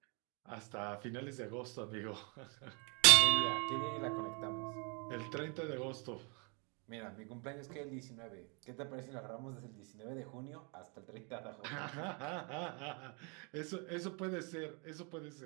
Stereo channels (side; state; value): left; quieter; 34.1 dB